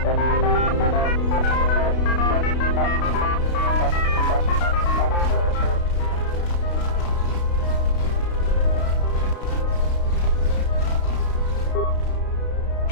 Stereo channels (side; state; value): right; late; 32 ms